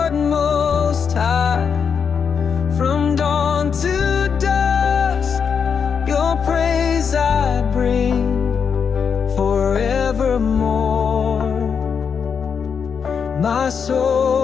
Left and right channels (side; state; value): right; quieter; 6.5 dB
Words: Most High. From dawn to dusk, your praise I bring forevermore. My soul